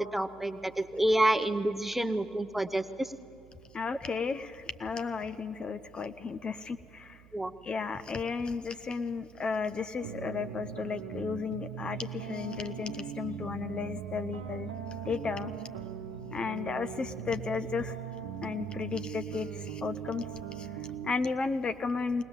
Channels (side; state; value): right; noise; hum, 22 dB below the sound